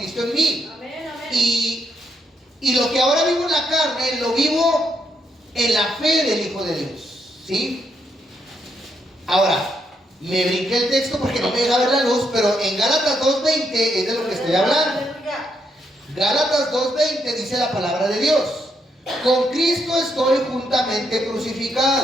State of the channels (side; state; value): both; normal; correlation 0.77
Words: en mí. Amén, amén. Y lo que ahora vivo en la carne, lo vivo en la fe del Hijo de Dios. ¿Sí? Ahora, me brinqué el texto porque no me deja ver la luz, pero en Gálatas 2:20 es de lo que estoy hablando. Aleluya. Gálatas 2:20 dice la palabra de Dios: con Cristo estoy juntamente